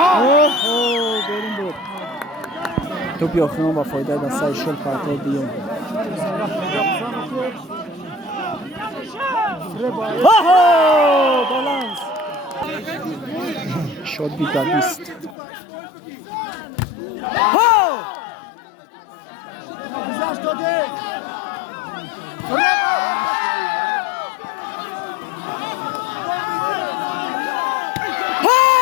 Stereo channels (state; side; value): drops out; right; at 15.4 s